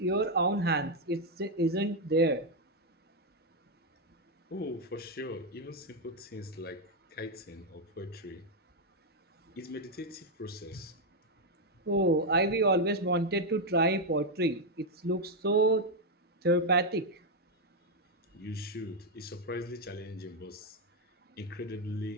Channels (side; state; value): both; normal; correlation 0.02